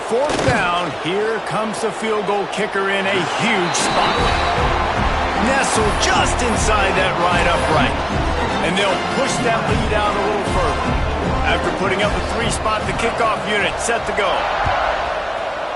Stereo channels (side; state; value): both; identical; correlation 1.00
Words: down, here comes the field goal kicker in a huge spot. Nestled just inside that right upright. And they'll push that lead out a little further. After putting up a 3-spot, the kickoff unit set to go.